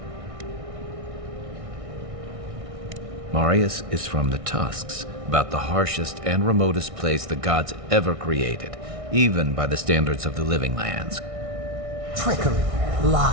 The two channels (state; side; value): late; left; 1.6 ms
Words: Marius is from the Tusks, about the harshest and remotest place the gods ever created, even by the standards of the Living Lands. Trickery,